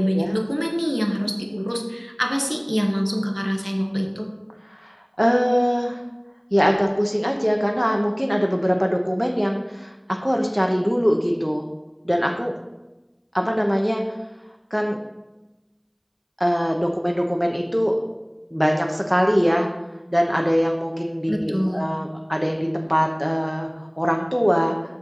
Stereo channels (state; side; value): identical; both; correlation 1.00